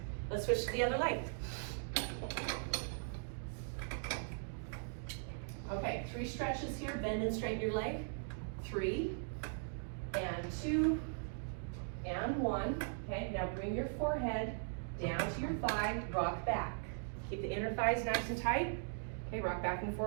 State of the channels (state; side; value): silent; left; digital silence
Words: Let's switch to the other leg. Okay, 3 stretches here. Bend and straighten your leg. 3, and 2, and 1. Okay, now bring your forehead down to your thigh. Rock back. Keep the inner thighs nice and tight. Okay, rock back and